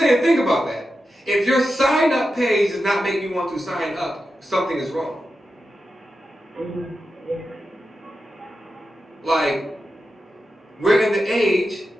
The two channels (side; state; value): both; normal; correlation 0.90